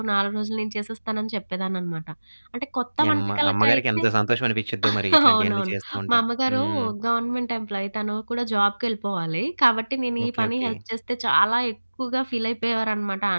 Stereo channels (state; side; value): inverted; both; correlation -1.00